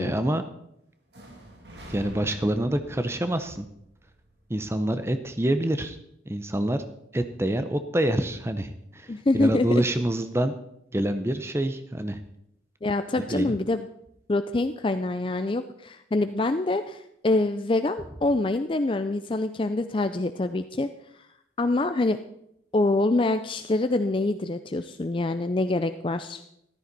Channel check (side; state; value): both; normal; correlation 0.74